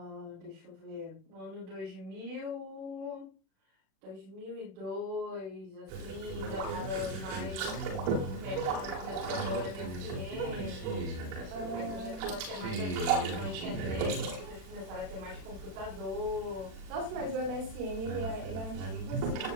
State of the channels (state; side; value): late; left; 36 ms